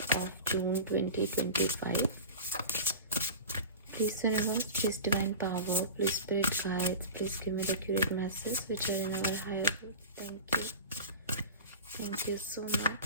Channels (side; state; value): both; inverted; correlation -0.32